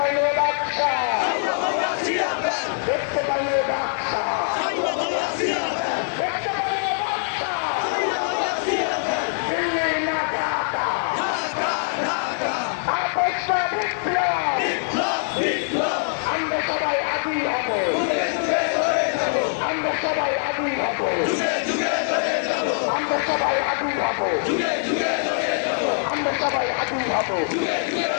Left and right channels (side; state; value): right; silent; 63 dB below the other